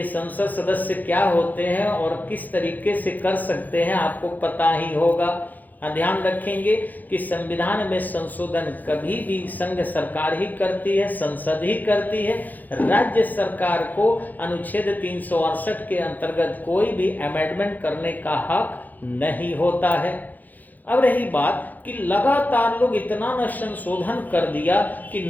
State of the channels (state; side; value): late; right; 0.083 ms